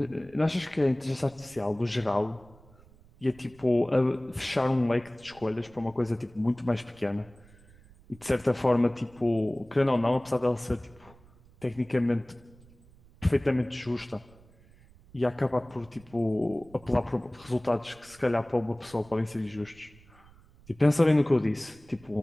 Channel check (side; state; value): right; noise; rumble, 25 dB below the sound